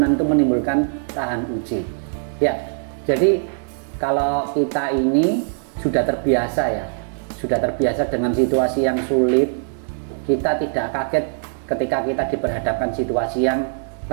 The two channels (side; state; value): left; silent; digital silence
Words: itu menimbulkan tahan uji. Ya, jadi kalau kita ini sudah terbiasa dengan situasi yang sulit, kita tidak kaget ketika kita diperhadapkan situasi yang